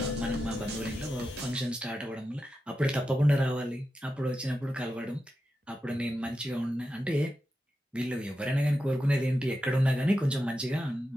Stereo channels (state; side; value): normal; both; correlation 0.90